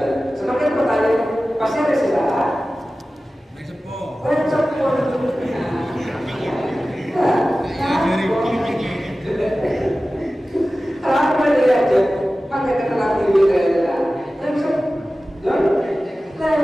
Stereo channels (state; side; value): normal; both; correlation 0.96